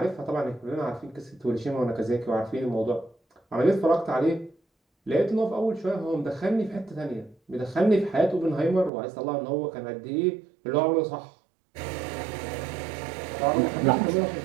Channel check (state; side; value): drops out; left; at 8.9 s